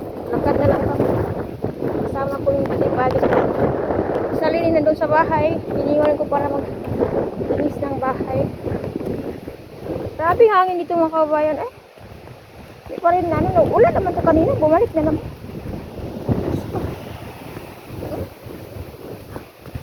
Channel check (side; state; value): both; identical; correlation 1.00